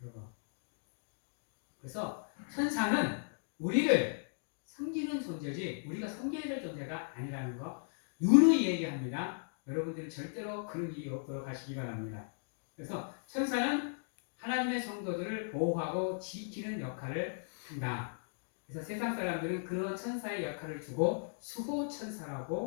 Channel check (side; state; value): right; silent; digital silence